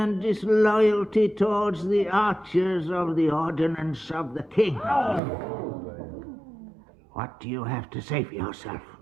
disloyalty towards the archers of the ordinance of the king. What do you have to say for yourself?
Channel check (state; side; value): drops out; left; at 5.2 s